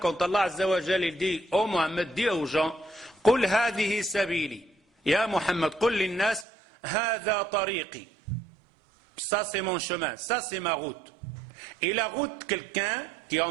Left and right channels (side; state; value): left; drops out; at 6.5 s